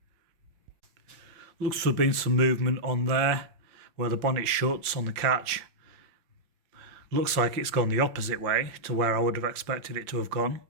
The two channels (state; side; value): late; left; 5.7 ms